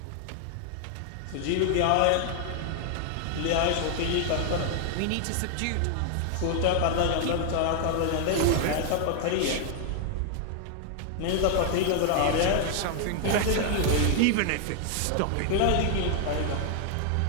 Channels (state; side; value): different; both; correlation 0.00